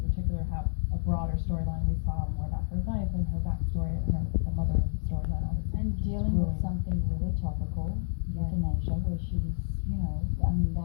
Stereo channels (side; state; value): right; silent; digital silence